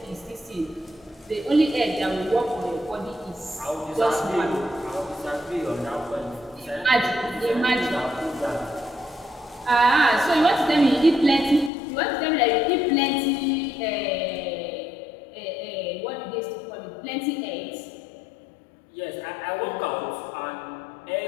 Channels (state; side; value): drops out; right; at 11.7 s